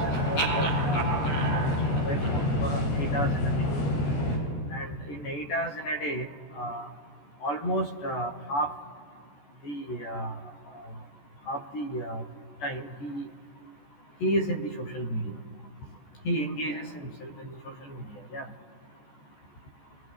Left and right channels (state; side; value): late; right; 14 ms